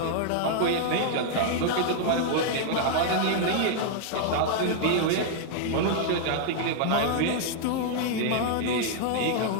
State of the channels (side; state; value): both; different; correlation -0.01